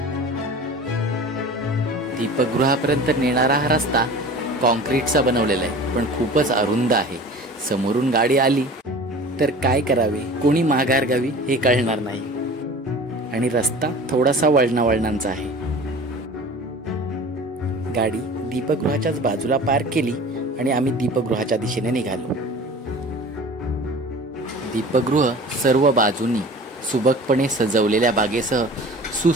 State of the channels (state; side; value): normal; both; correlation 0.40